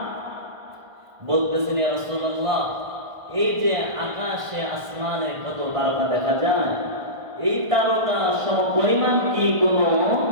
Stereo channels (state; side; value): late; left; 1.5 ms